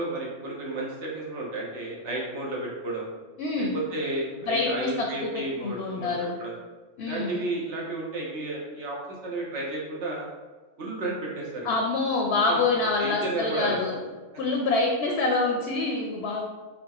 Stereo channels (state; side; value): normal; both; correlation -0.01